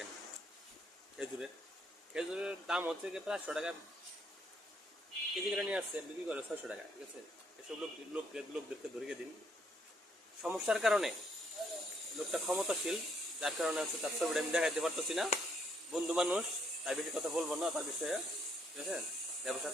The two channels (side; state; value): both; normal; correlation 0.70